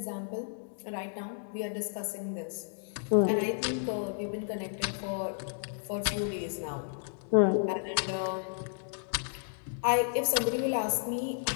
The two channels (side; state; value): right; silent; digital silence